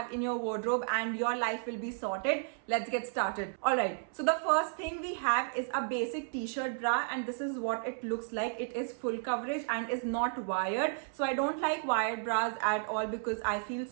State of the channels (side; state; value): left; silent; 56 dB below the other